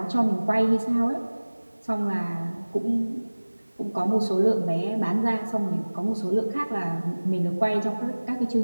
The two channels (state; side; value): inverted; both; correlation -1.00